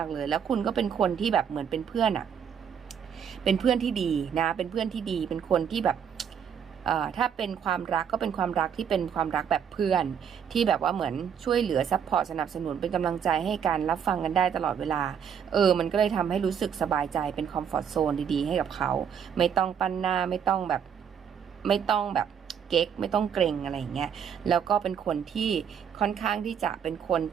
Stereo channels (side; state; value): left; quieter; 7.9 dB